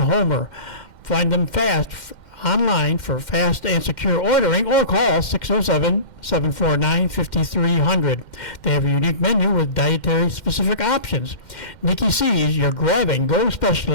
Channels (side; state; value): right; late; 2.1 ms